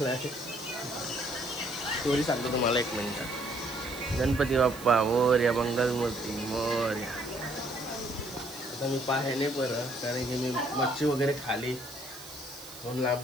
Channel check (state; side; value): noise; right; hiss, 16 dB below the sound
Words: स्टोरी सांगतो तुम्हाला एक मिनिट. गणपती बाप्पा मोरया, मंगलमूर्ती मोरया. आता मी पाय नाही बरं कारण की मी मच्छी वगैरे खाली म्हणून